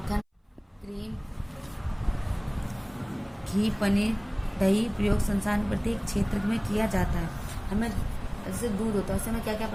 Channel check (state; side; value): identical; both; correlation 1.00